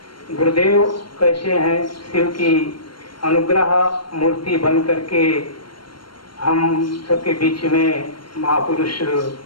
गुरुदेव कैसे हैं, शिव की अनुग्रह मूर्ति बन करके हम सबके बीच में महापुरुष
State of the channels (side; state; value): right; late; 0.72 ms